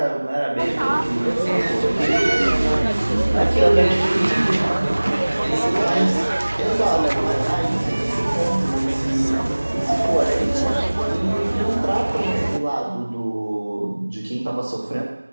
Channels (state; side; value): inverted; both; correlation -1.00